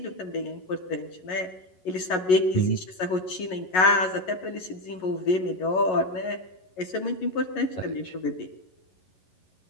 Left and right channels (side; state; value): right; late; 11 ms